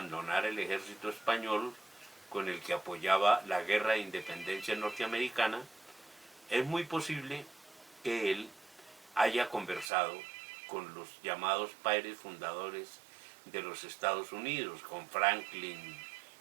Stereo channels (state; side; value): drops out; left; at 9.9 s